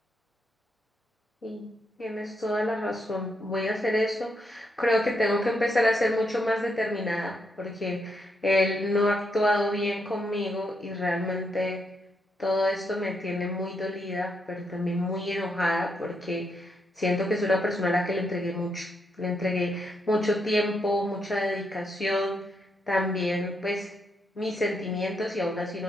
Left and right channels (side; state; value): both; normal; correlation 0.79